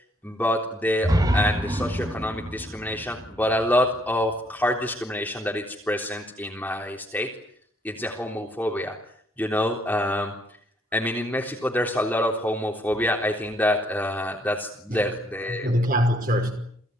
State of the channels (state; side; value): normal; both; correlation 0.68